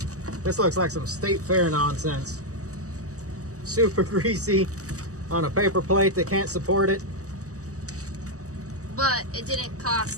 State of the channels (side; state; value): left; late; 0.66 ms